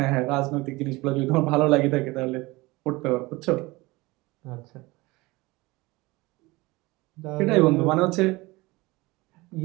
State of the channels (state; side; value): quieter; left; 22.1 dB